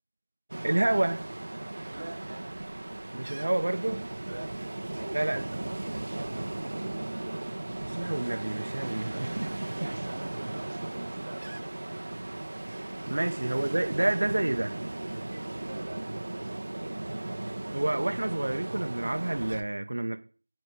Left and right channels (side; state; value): both; inverted; correlation -1.00